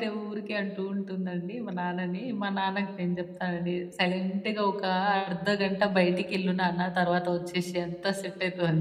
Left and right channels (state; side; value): identical; both; correlation 1.00